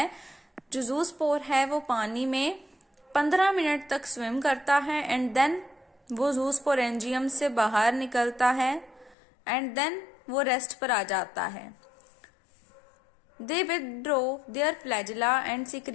जो जूस्पोर है वो पानी में 15 मिनट तक स्विम करता है एंड देन वो जूस्पोरेंजियम से बाहर निकलता है एंड देन वो रेस्ट पर आ जाता है। They withdraw their flagella and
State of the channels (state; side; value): drops out; right; at 9.2 s